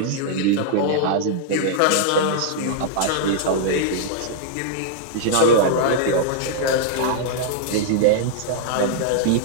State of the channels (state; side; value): different; both; correlation -0.01